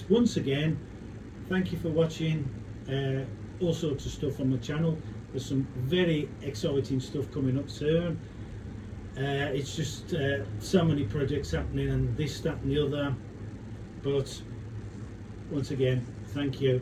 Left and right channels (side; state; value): both; identical; correlation 1.00